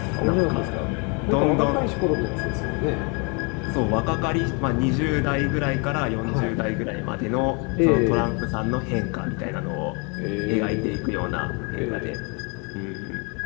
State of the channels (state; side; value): quieter; right; 33.6 dB